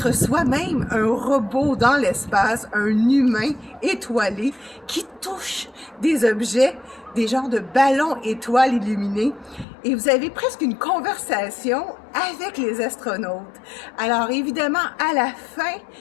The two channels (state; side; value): drops out; right; at 9.7 s